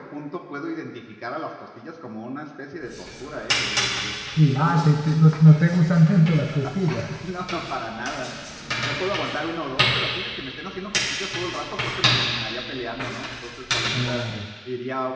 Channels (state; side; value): identical; both; correlation 1.00